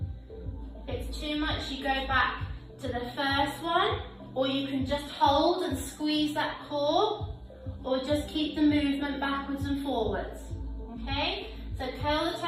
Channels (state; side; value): identical; both; correlation 1.00